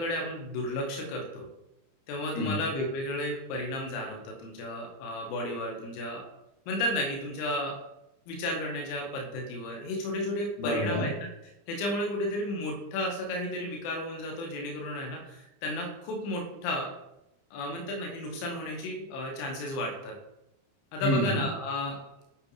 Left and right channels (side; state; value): right; late; 30 ms